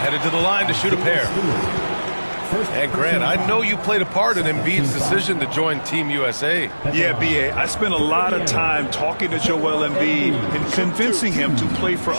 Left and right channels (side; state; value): both; inverted; correlation -1.00